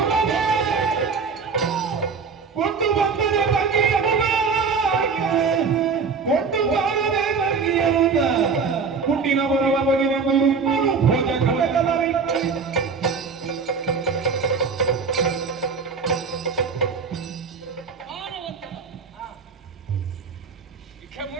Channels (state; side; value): quieter; left; 5.3 dB